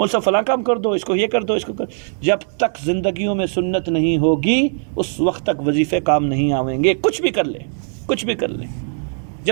صاحب فلاں کام کر دو، اس کو یہ کر دو، اس کو کر. جب تک زندگیوں میں سنت نہیں ہوگی اس وقت تک وظیفے کام نہیں آئیں گے. کچھ بھی کر لیں، کچھ بھی کر لیں،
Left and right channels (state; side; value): silent; left; 66 dB below the other